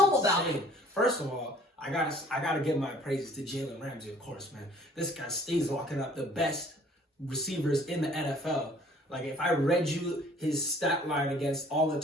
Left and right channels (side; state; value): both; normal; correlation 0.55